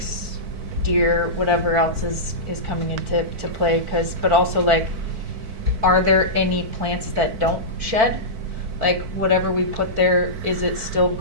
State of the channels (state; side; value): late; left; 4.5 ms